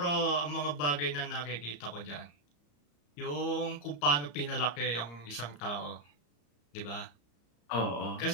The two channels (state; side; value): late; right; 34 ms